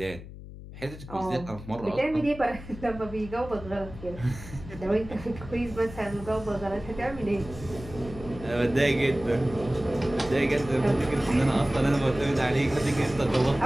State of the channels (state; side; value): noise; left; hum, 14 dB below the sound